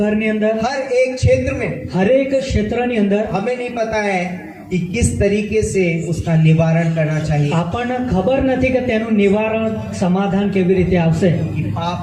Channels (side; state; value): both; identical; correlation 1.00